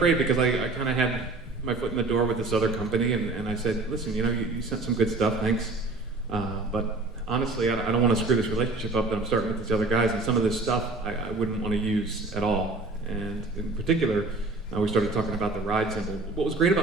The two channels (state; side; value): quieter; left; 3.3 dB